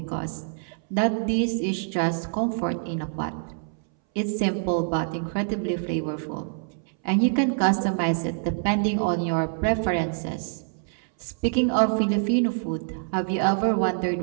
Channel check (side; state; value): left; silent; 61 dB below the other